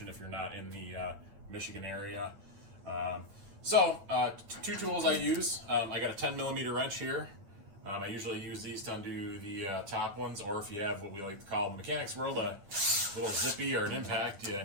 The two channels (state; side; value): late; left; 10 ms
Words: if you're not in the Michigan area. Two tools I use. I got a 10 millimeter wrench here. I usually use these to undo the top ones, or if you have what we like to call in the mechanics world a little zippy or an impact,